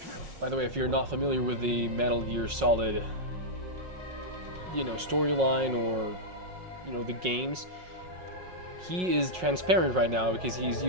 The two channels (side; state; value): left; late; 5.5 ms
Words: By the way, if you're not familiar with the Metal Gear Solid, you know, storyline or, you know, the games, he is transparent right now because he's